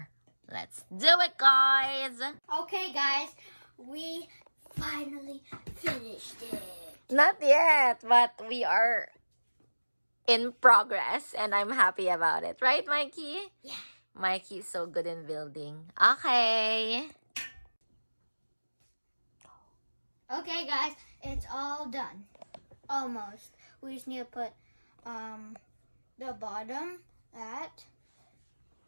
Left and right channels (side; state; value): both; inverted; correlation -1.00